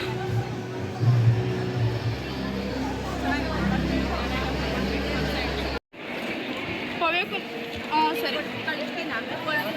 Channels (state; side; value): identical; both; correlation 1.00